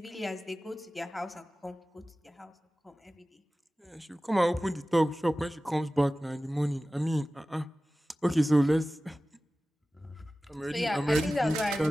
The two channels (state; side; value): normal; both; correlation 0.96